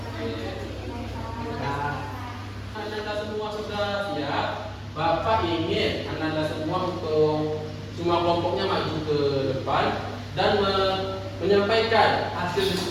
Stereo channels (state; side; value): identical; both; correlation 1.00